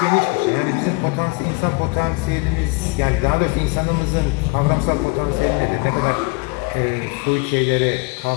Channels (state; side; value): quieter; right; 27.9 dB